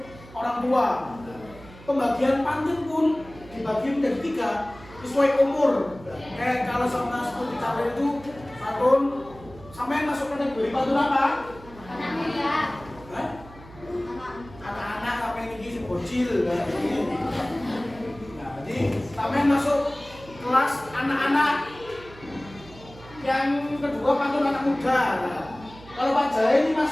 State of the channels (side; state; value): right; noise; hum, 19 dB below the sound